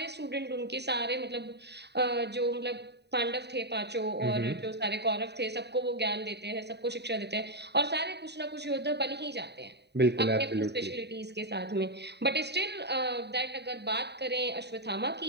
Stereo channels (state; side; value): late; left; 0.49 ms